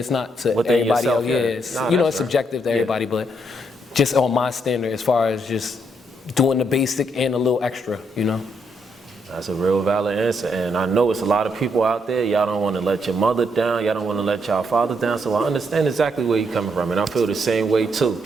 not to everybody else. It's subjective to everybody, but just on my standard as far as just doing the basic and a little extra, you know? That's a real valid answer, and I know it's a lot of people out there, y'all don't want to let your mother down, y'all don't want to let y'all father down, so I understand exactly where you're coming from, and I feel the same way too.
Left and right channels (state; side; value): normal; both; correlation 0.76